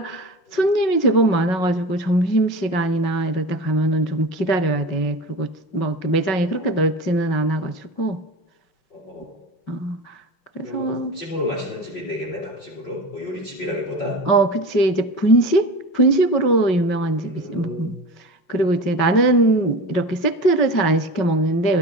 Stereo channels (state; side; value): late; right; 5.4 ms